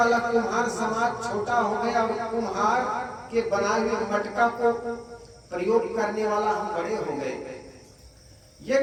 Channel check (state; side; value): identical; both; correlation 1.00